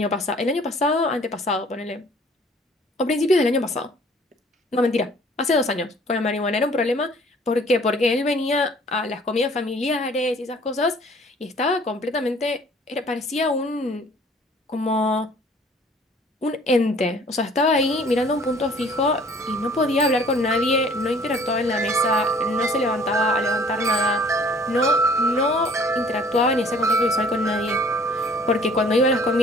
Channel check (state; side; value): normal; both; correlation 0.54